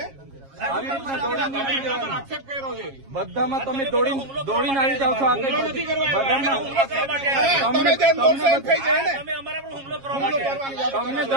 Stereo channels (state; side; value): late; left; 7.4 ms